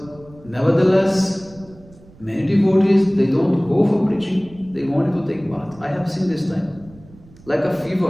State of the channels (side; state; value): right; noise; rumble, 23 dB below the sound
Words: nevertheless, Many devotees, they don't go for preaching, they wanted to take bath. I have seen this time. Like a